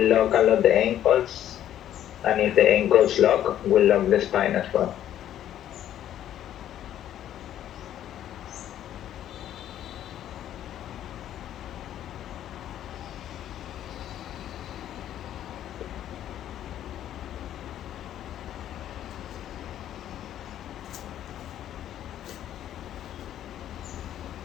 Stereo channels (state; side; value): quieter; right; 11.3 dB